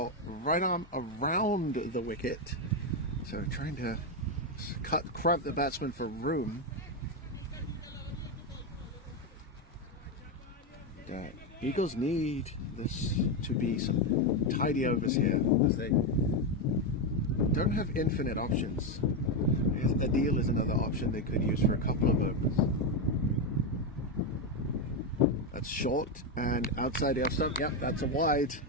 right arm around the wicket. So trying to cramp the batsman for room. Eagles need this to be some tidy overs here, as they don't have infinite options. Adil is another option they could use for a couple of overs. That's short and outside the off stump. Yep, that's a wide.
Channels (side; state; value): both; normal; correlation 0.07